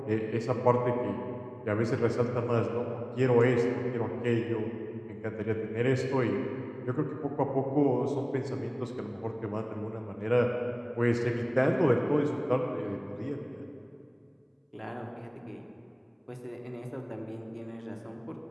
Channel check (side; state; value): both; identical; correlation 1.00